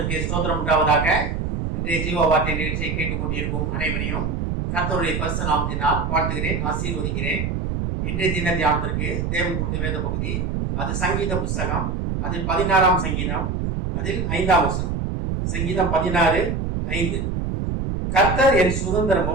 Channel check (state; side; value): noise; right; rumble, 1 dB below the sound